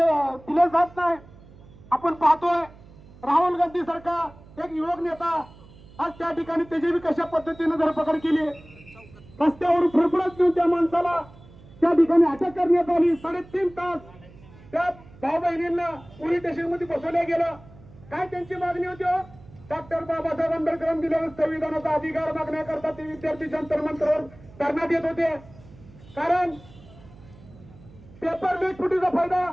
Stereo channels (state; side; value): noise; right; hum, 22 dB below the sound